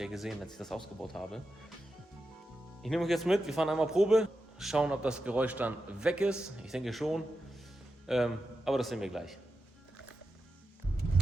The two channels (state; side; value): normal; both; correlation 0.90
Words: ja gesehen, als ich das ausgebaut habe. Ich nehme euch jetzt mit, wir fahren einmal Probe, schauen, ob das Geräusch dann weg ist. Ich denke schon, aber das sehen wir gleich.